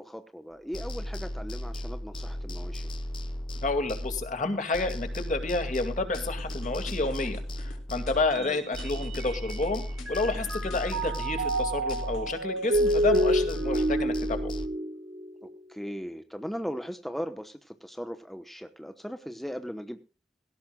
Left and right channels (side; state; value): both; normal; correlation 0.45